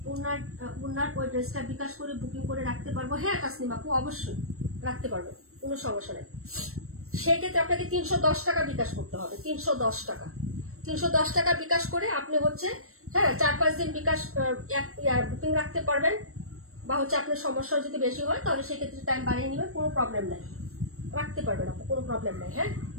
ওনার ওই ড্রেসটা বিকাশ করে বুকিং করে রাখতে পারবো? হ্যাঁ তাসনিম আপু অবশ্যই রাখতে পারবো, কোনো সমস্যা নেই। সেক্ষেত্রে আপনাকে 310 টাকা বিকাশ করতে হবে, 310 টাকা। 310 টাকা বিকাশ করে আপনি হচ্ছে হ্যাঁ 4-5 দিন বিকাশ বুকিং রাখতে পারবেন, বা হচ্ছে আপনার সমস্যা যদি বেশি হয় তাহলে সেক্ষেত্রে টাইম বাড়িয়ে নেবেন, কোনো প্রবলেম নাই, রাখতে পারবেন আপু, কোনো প্রবলেম নাই। হ্যাঁ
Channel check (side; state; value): left; late; 0.63 ms